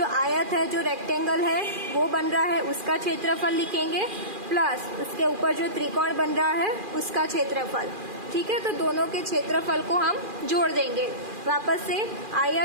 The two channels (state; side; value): late; left; 2.4 ms